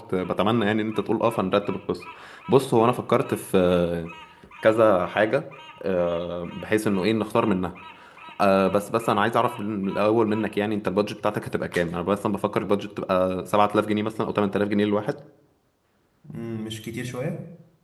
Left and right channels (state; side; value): identical; both; correlation 1.00